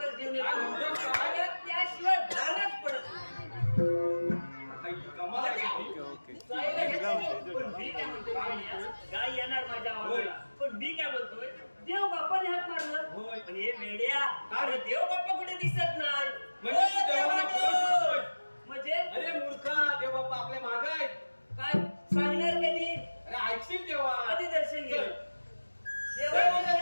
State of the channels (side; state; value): both; inverted; correlation -1.00